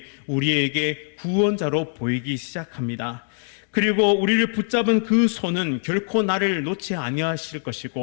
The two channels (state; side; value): silent; right; 57 dB below the other